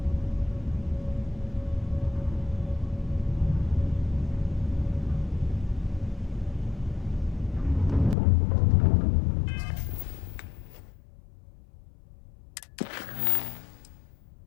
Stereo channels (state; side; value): drops out; right; at 8.2 s